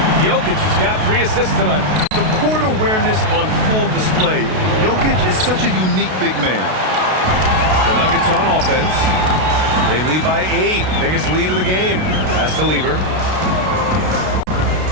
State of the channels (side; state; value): left; late; 32 ms